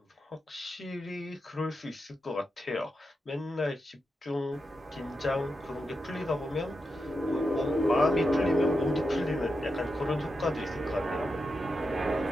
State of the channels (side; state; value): both; normal; correlation 0.87